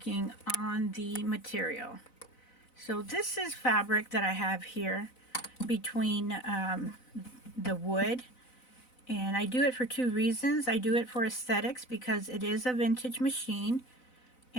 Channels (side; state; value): right; late; 4.0 ms